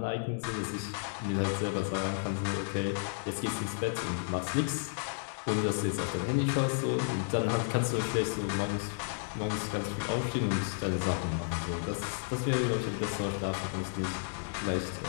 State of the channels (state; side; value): silent; right; digital silence